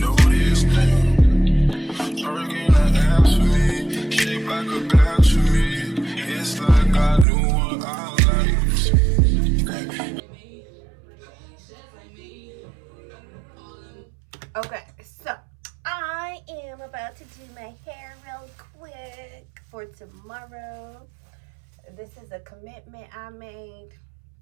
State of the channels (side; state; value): left; drops out; at 7.2 s